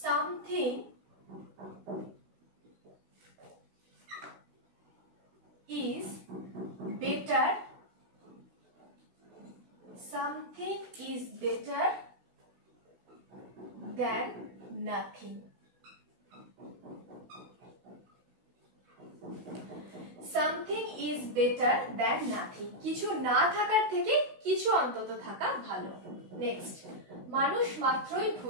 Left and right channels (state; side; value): late; left; 16 ms